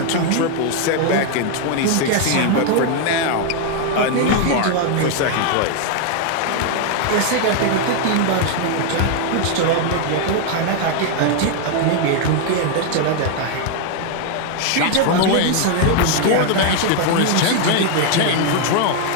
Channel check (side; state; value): both; different; correlation 0.00